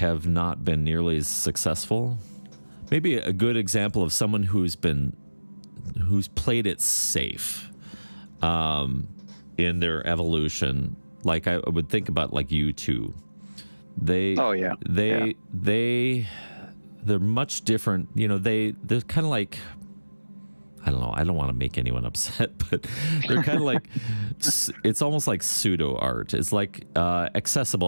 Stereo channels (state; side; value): inverted; both; correlation -1.00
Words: not been nearly as successful. Maybe a good example of someone who's played it safe in their evolution. Like I would think about like U2. They're much different. They're kind of like, I don't know. I don't want to make anyone upset, but they're kind of like, it's almost like pseudo art. It's like